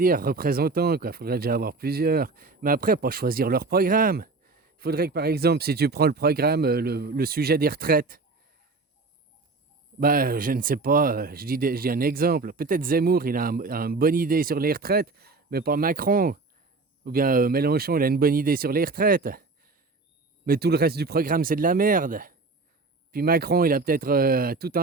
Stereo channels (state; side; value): quieter; left; 3.8 dB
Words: Représentants, quoi. Faudrait déjà avoir plusieurs. Mais après, pas choisir leur programme. Il faudrait que, par exemple, si tu prends le programme, le sujet des retraites, bah, je ne sais pas, je dis un exemple. Peut-être Zemmour, il a une bonne idée sur les retraites, mais pas Macron. Ou bien Mélenchon, il a une bonne idée sur les retraites. Mais tout le reste du programme, c'est de la merde. Puis Macron, il a peut-être tout